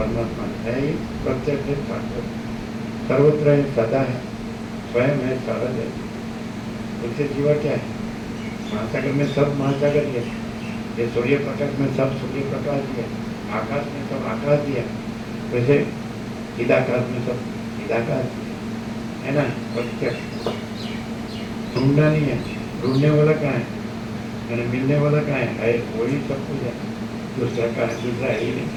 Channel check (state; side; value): identical; both; correlation 1.00